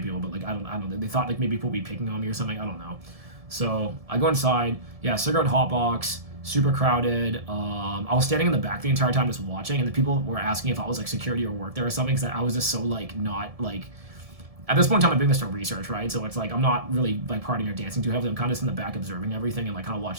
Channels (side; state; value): left; late; 1.7 ms